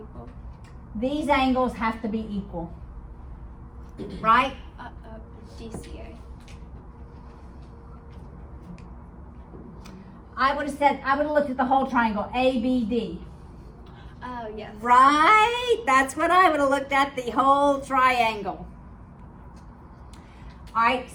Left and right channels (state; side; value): identical; both; correlation 1.00